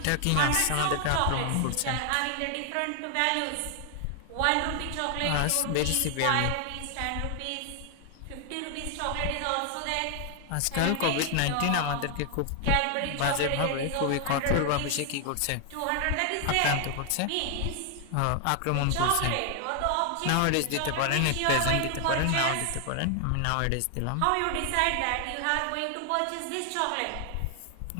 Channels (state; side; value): different; both; correlation 0.00